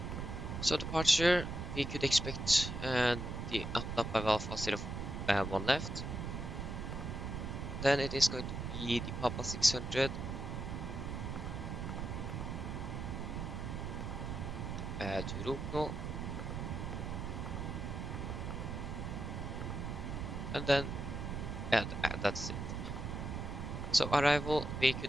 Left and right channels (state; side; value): noise; right; rumble, 4 dB below the sound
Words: So departure, we could expect the up by Alpha 01 left. Then it is going to be the Papa 600. To Rupno. And then, yeah, that's it. So arrival, we